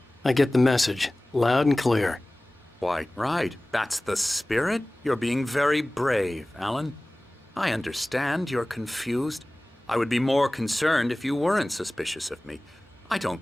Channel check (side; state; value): both; normal; correlation 0.98